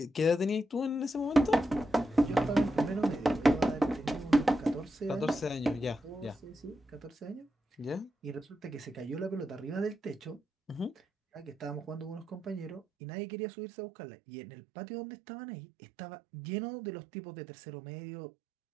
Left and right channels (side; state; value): left; drops out; at 12.9 s